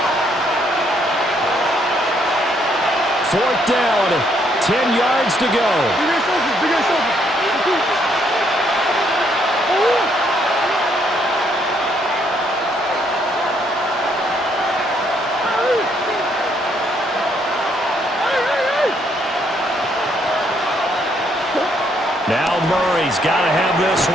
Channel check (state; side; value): normal; both; correlation 0.71